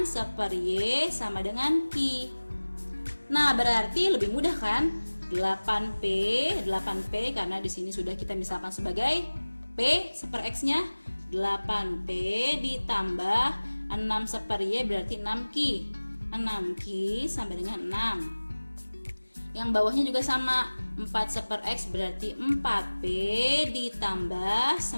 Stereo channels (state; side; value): inverted; both; correlation -1.00